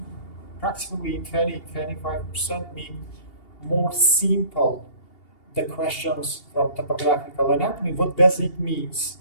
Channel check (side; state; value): right; late; 2.8 ms